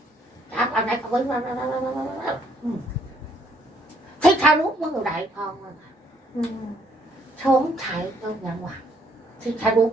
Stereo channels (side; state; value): both; normal; correlation 0.68